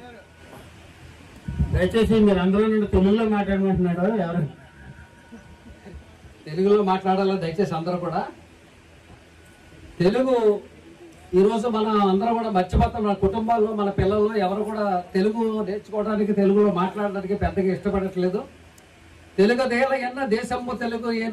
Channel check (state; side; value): identical; both; correlation 1.00